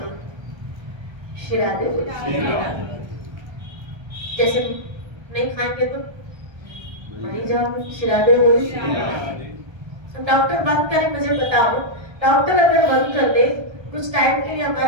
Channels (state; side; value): late; left; 1.3 ms